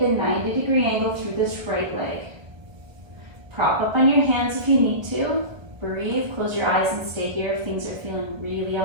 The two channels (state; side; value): late; left; 1.0 ms